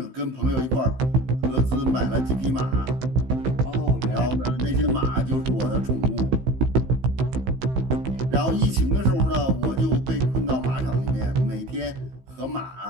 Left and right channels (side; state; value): left; late; 15 ms